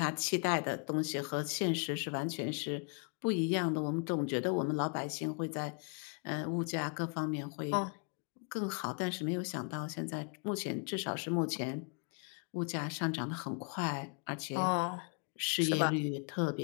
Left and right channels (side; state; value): right; quieter; 38.2 dB